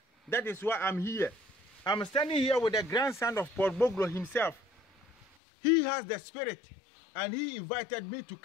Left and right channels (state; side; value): drops out; right; at 5.2 s